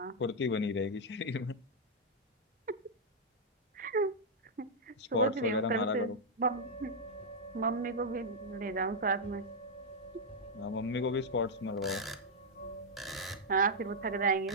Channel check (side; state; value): both; normal; correlation -0.03